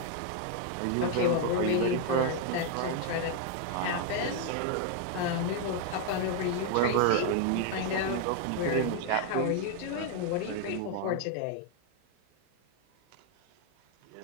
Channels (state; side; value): different; both; correlation 0.00